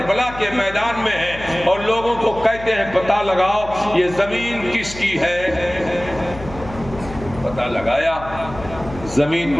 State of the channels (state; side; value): noise; left; hum, 14 dB below the sound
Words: کے میدان میں ہے اور لوگوں کو کہتے ہیں پتہ لگاؤ یہ زمین کس کی ہے۔ پتہ لگایا، زمین